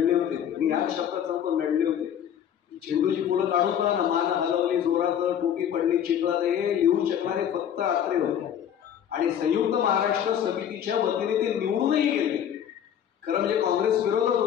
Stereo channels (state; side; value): quieter; right; 9.4 dB